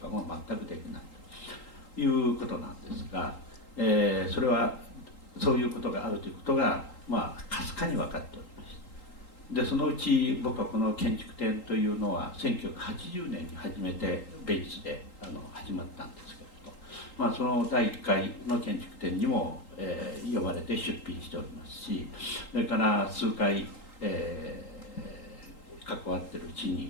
も全くできないということなんですが、それはそういうことがあるということがかすかに分かっておりました。でそのうち僕はこの建築展というのは1980年に初めてベイツで始まったんですけれど、その第1回の建築展にも、呼ばれて出品しておりますし、それから数回、関わってるうち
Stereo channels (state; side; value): late; right; 3.8 ms